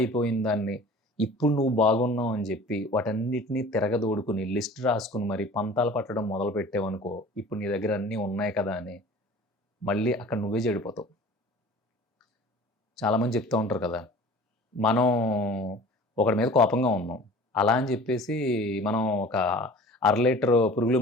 దాన్ని ఇప్పుడు నువ్వు బాగున్నావు అని జెప్పి వాటన్నిటిని తిరగదోడుకొని లిస్ట్ రాసుకొని మరి పంతాలు పట్టడం మొదలుపెట్టావనుకో, ఇప్పుడు నీ దగ్గర అన్నీ ఉన్నాయి కదా అని మళ్ళీ అక్కడ నువ్వే చెడిపోతావు. చాలామంది చెప్తూ ఉంటారు కదా! మనం ఒకడి మీద కోపంగా ఉన్నాం. అలా అని జెప్పేసి మనం ఒక అర లీటరు పురుగుల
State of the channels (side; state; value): both; normal; correlation 0.44